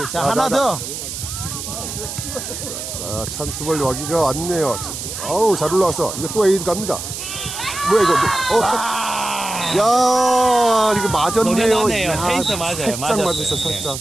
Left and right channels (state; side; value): noise; right; hiss, 7 dB below the sound